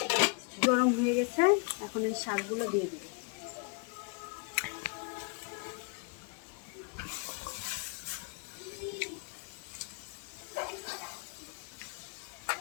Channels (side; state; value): right; quieter; 33.3 dB